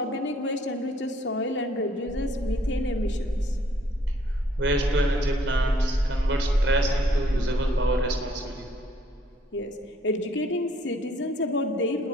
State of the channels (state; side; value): normal; both; correlation 0.63